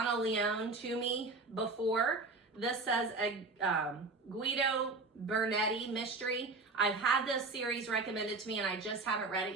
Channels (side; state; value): left; quieter; 3.7 dB